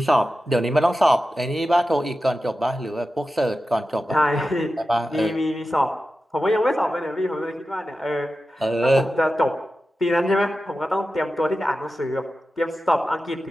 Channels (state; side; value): normal; both; correlation 0.93